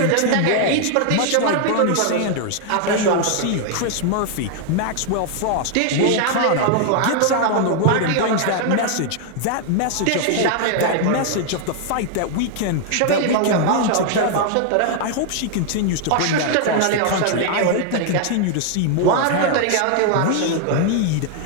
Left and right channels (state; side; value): different; both; correlation 0.00